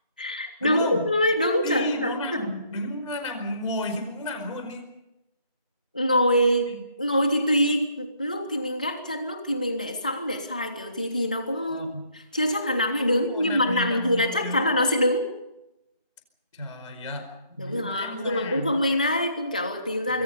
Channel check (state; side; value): inverted; both; correlation -0.66